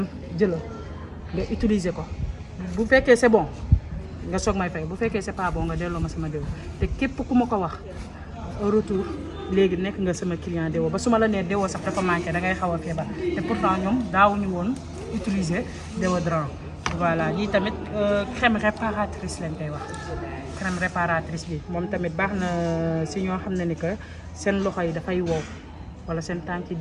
jëlal nga utiliser ko bu fekkee c'est bon nga soog may fay bu fekkee c'est pas bon nga delloo ma sama déo te képp ku ma ko wax au retour léegi nekk nga sama client déo ba su ma la nee déo sax dafa manqué da ngay xaw a feebar te pourtant ñoom daawuñu woon utiliser déodorant voilà lii tamit crème réparatrice lañ koy wax crème réparatrice bi moom tamit baax na si ñoo xam ne ni que seen loxo yi dafay wow wala seen tànk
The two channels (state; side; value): identical; both; correlation 1.00